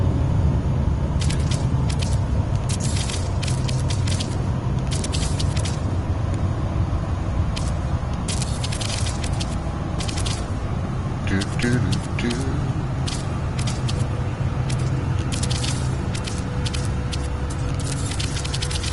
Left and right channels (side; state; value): both; identical; correlation 1.00